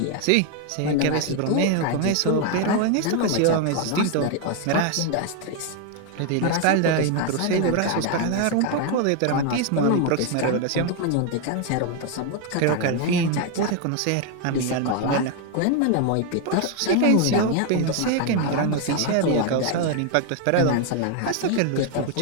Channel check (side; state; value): both; different; correlation 0.01